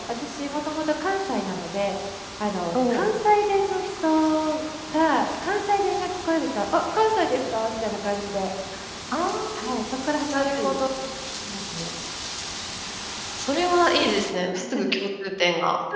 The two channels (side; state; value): both; identical; correlation 1.00